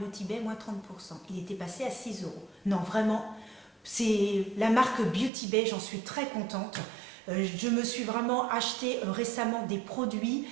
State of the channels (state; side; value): drops out; left; at 5.3 s